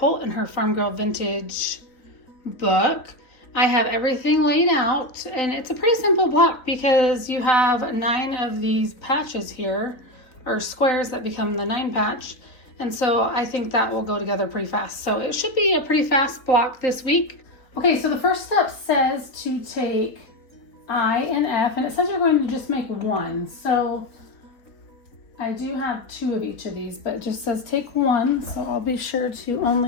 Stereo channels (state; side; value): late; right; 3.9 ms